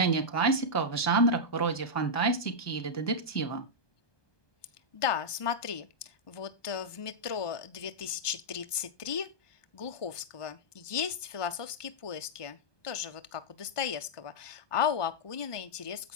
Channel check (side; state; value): right; late; 1.2 ms